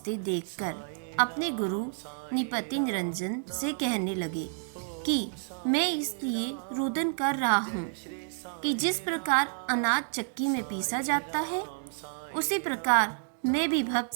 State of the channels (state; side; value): silent; left; digital silence